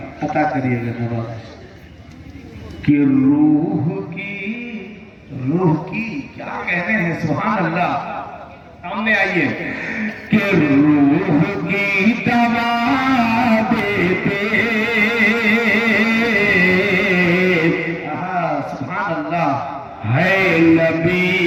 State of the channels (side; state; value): both; identical; correlation 1.00